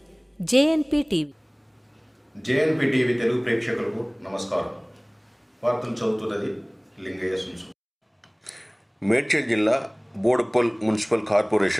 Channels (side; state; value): both; identical; correlation 1.00